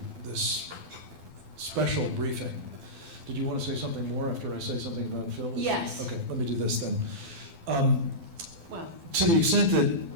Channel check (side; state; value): left; late; 12 ms